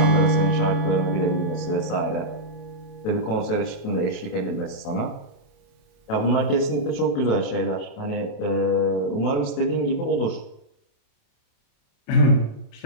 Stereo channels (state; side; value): late; right; 28 ms